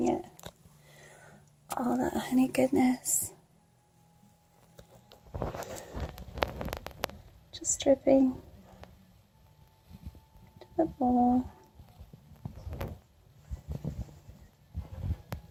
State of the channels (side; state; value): both; identical; correlation 1.00